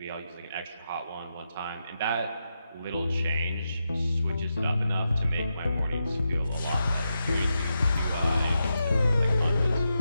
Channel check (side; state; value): both; inverted; correlation -0.87